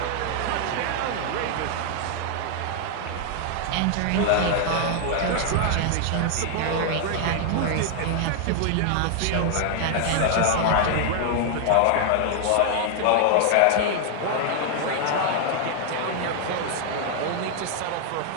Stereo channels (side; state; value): both; different; correlation 0.00